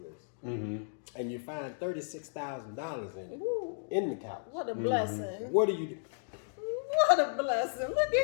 and you find $36,000 in it Ooh, in the couch. what a blessing. What do you do? What a blessing. Look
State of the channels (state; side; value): silent; right; digital silence